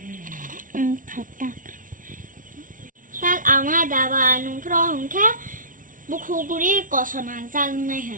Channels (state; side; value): late; left; 0.38 ms